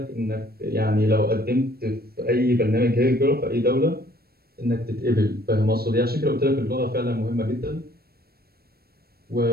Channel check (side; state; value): left; late; 0.45 ms